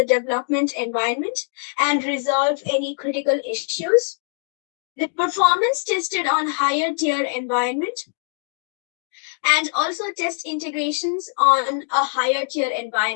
development environment and resolve any critical issues. The performance tested on higher tier environment and also test integrations on a higher tier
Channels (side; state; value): right; silent; digital silence